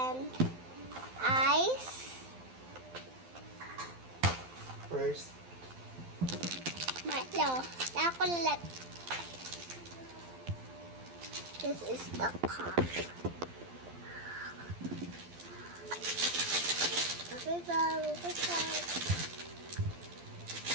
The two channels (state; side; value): late; left; 12 ms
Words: ice. First, Milo, chocolate. This is the cup. Okay, bago ko start.